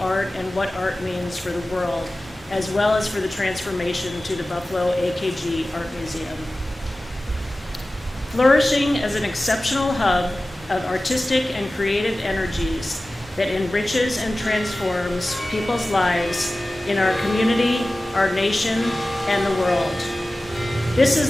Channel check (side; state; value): both; normal; correlation 0.96